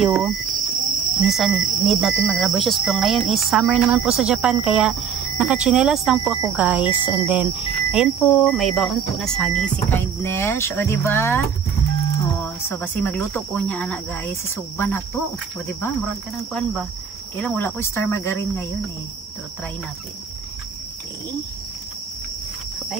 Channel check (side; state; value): left; quieter; 7.3 dB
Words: minsan need natin mag-rubber shoes. Pero ngayon is summer naman po sa Japan, kaya naka-tsinelas lang po ako guys. And then, ayan po, may baon po na saging si Kindness. O, diba? Oh, so basi magluto ko niya anak guys, sisuban na to. O diba, murag ka ng kuan ba? Kailang wala ko star margarine ngayon eh. So try natin. Okay.